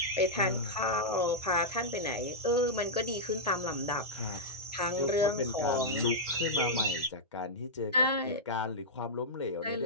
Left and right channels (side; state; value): both; normal; correlation -0.09